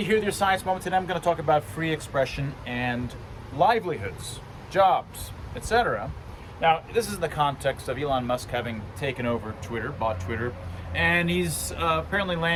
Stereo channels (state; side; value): identical; both; correlation 1.00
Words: here with your Science Moment. Today I'm going to talk about free expression and livelihoods, jobs, etc. Now, this is in the context of Elon Musk having taken over Twitter, bought Twitter, and he's apparently